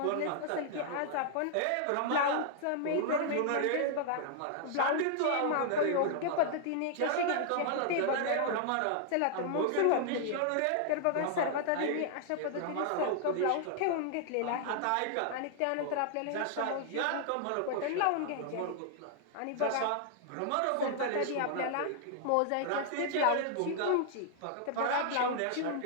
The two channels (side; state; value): both; different; correlation -0.01